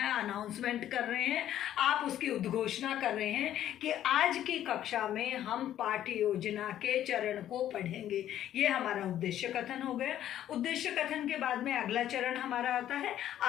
अनाउंसमेंट कर रहे हैं, आप उसकी उद्घोषणा कर रहे हैं कि आज की कक्षा में हम पाठ्य योजना के चरण को पढ़ेंगे। ये हमारा उद्देश्य कथन हो गया। उद्देश्य कथन के बाद में अगला चरण हमारा आता है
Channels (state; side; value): quieter; right; 11.6 dB